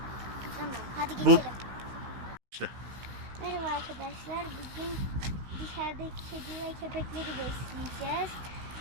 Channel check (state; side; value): late; left; 16 ms